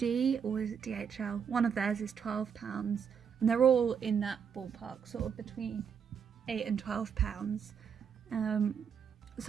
or is it DHL? One of theirs is £12, and they're all in that ballpark, sort of between £8 and £12.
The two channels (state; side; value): quieter; left; 7.1 dB